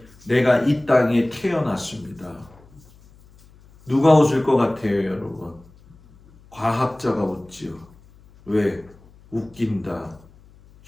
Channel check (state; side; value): noise; left; hum, 26 dB below the sound